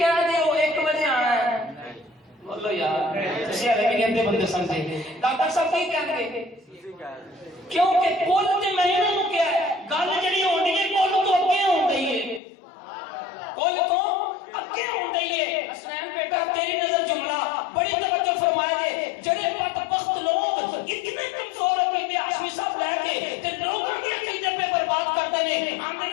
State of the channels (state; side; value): drops out; right; at 12.4 s